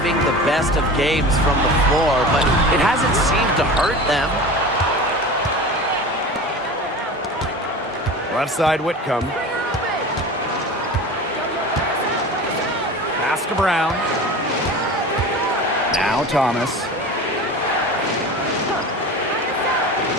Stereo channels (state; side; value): normal; both; correlation 0.34